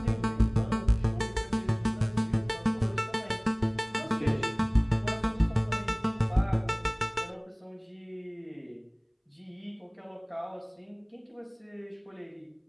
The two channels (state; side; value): identical; both; correlation 1.00